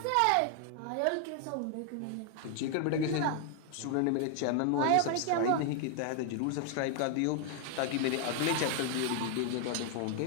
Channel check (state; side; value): different; both; correlation 0.00